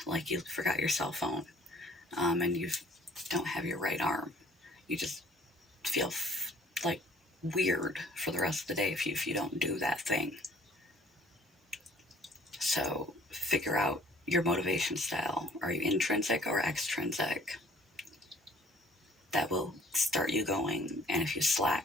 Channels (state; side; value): normal; both; correlation 0.56